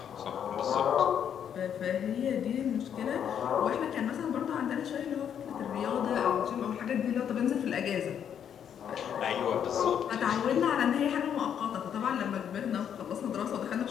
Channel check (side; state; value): right; quieter; 8.7 dB